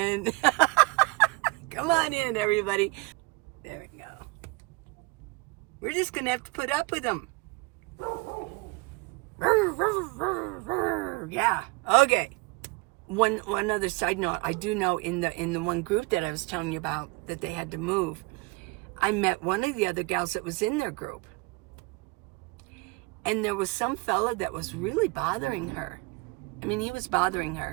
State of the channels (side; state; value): left; quieter; 25.8 dB